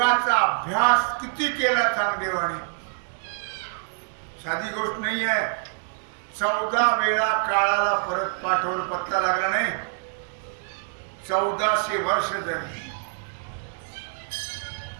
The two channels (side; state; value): left; silent; digital silence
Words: अभ्यास किती केला चांगदेवाने, साधी गोष्ट नाही आहे. 14 वेळा काळाला परत पाठवलं, पत्ता लागला नाही. 1400 वर्ष झाली,